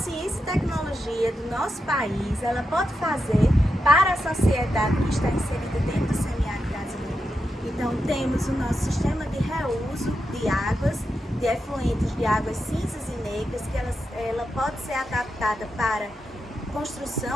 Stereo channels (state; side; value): normal; both; correlation 0.87